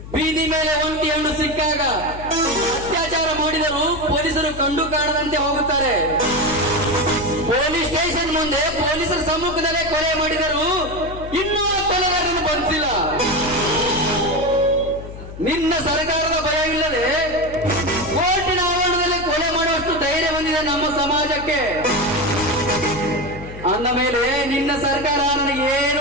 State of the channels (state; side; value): noise; left; hum, 13 dB below the sound